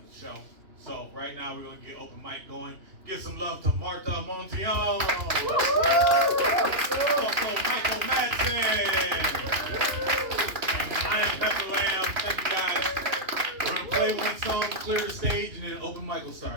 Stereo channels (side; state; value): left; late; 2.9 ms